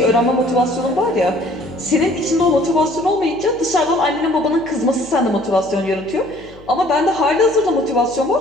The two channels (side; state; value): left; noise; hum, 23 dB below the sound